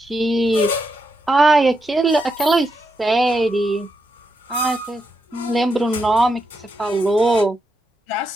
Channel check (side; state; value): both; normal; correlation 0.83